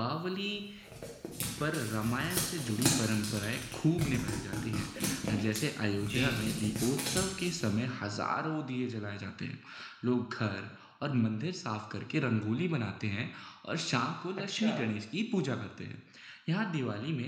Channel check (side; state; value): both; identical; correlation 1.00